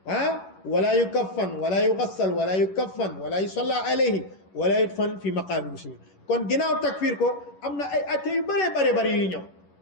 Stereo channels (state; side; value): late; right; 11 ms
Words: wala yukaffan wala yugassal wala yukaffan wala yusalla alayhi wala yudfan fi maqaami muslimin kon ginnaaw takfir ko am na ay atte yu bare yuy ñëw